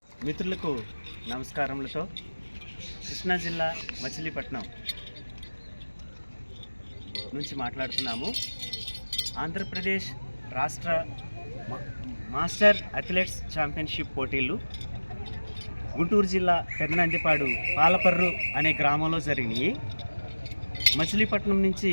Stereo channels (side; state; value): both; inverted; correlation -1.00